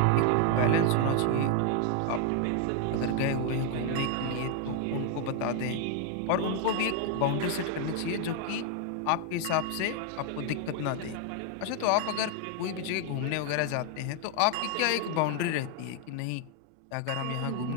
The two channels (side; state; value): both; different; correlation 0.00